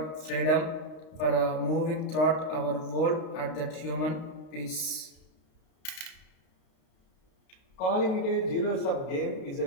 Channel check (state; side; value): late; right; 32 ms